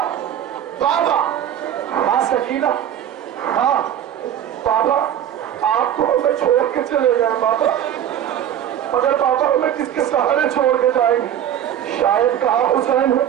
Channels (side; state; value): left; quieter; 10.2 dB